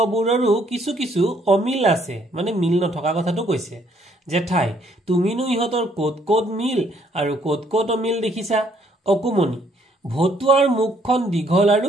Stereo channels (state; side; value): normal; both; correlation 0.66